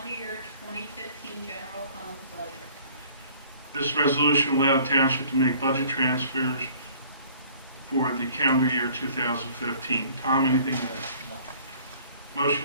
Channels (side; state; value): both; inverted; correlation -0.54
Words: year 2015 general fund budget. This resolution allowed township to make budget transfers for the calendar year 2015. Tom, anything to add?